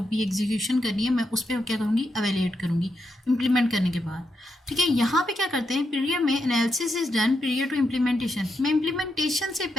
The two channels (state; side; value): normal; both; correlation 0.83